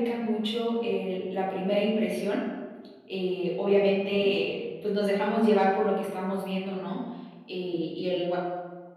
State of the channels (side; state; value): both; identical; correlation 1.00